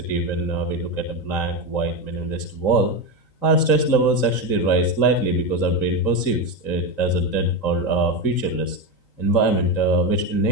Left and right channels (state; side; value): late; right; 3.9 ms